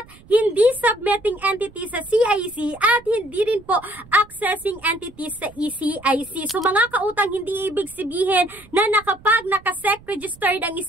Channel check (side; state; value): right; noise; rumble, 24 dB below the sound